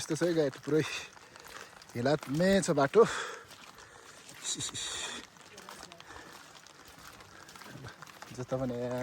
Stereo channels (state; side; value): identical; both; correlation 1.00